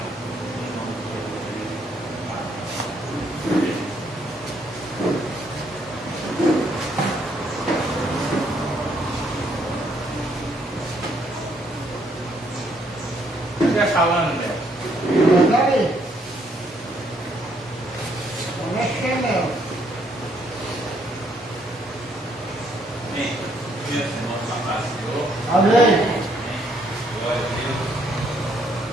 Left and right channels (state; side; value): normal; both; correlation 0.70